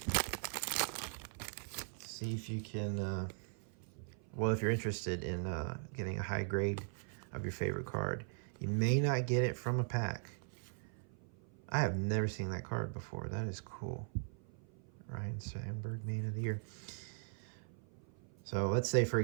well, if you're interested in getting a high grade of your favorite card, you may not get it from a pack. I have never seen that card before. That is cool. Ryan Sandberg, Man of the Year. So let's say, for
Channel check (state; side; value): silent; left; 51 dB below the other